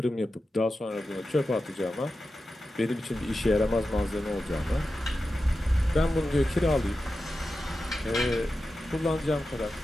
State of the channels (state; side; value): normal; both; correlation 0.92